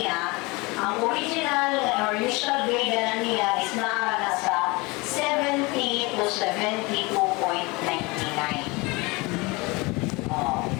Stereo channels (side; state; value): right; quieter; 25.1 dB